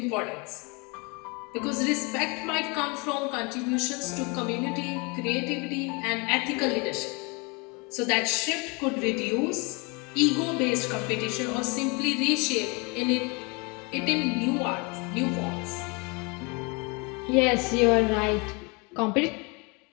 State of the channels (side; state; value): right; quieter; 29.8 dB